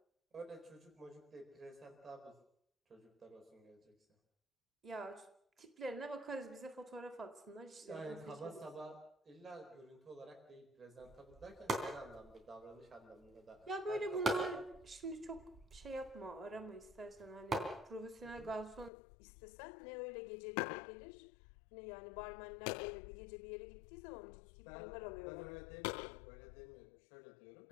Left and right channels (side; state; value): right; drops out; at 18.9 s